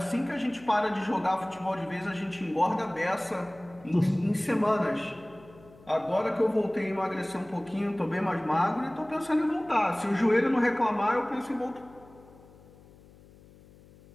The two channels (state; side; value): noise; left; hum, 24 dB below the sound